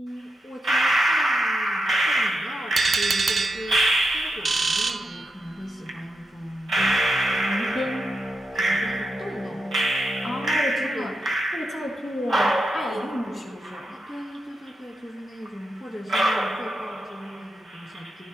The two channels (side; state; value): both; normal; correlation 0.86